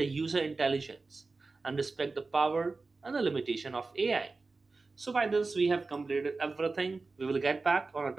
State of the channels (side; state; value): left; quieter; 3.8 dB